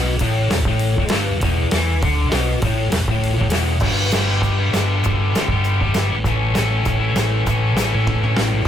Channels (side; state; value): both; normal; correlation 0.80